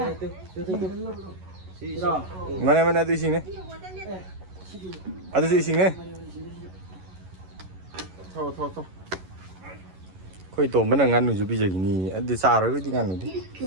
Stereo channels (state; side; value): late; left; 11 ms